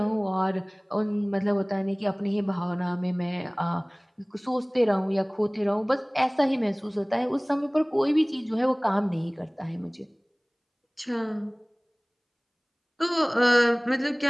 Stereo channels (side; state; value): both; identical; correlation 1.00